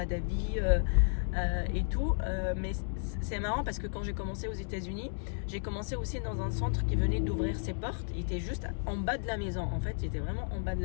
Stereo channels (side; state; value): right; silent; digital silence